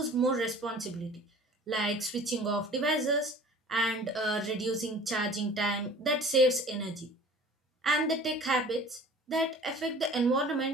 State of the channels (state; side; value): normal; both; correlation 0.45